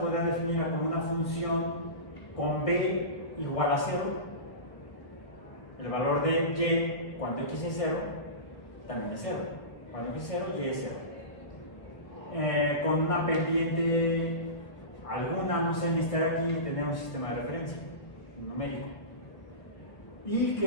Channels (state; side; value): late; right; 1.1 ms